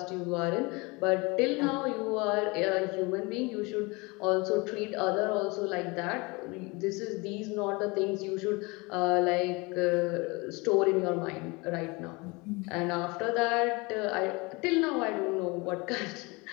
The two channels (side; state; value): right; quieter; 26.1 dB